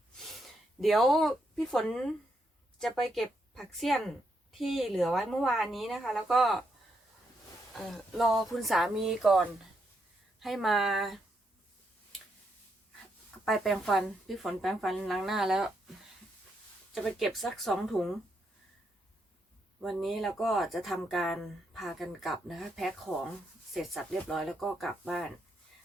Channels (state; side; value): normal; both; correlation 0.79